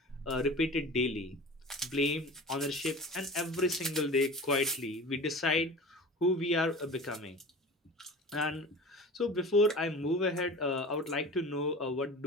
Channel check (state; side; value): normal; both; correlation 0.37